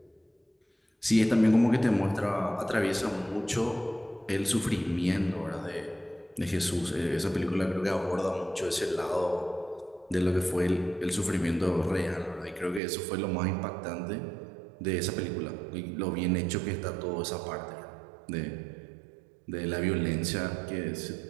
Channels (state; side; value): drops out; left; at 12.8 s